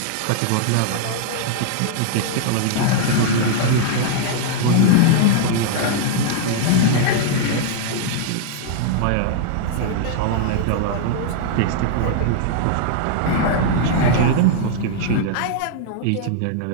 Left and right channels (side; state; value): both; different; correlation -0.01